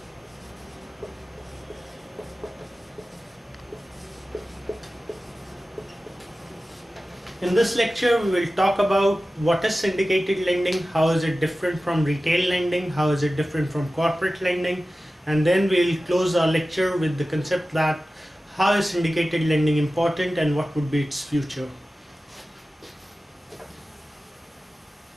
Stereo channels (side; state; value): both; normal; correlation 0.95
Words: In this lecture, we will talk about what is syndicated lending, how is it different from retail lending, how is it different from corporate lending, and then we'll close our lecture with the concept that how is syndicated lending important and what would be its future.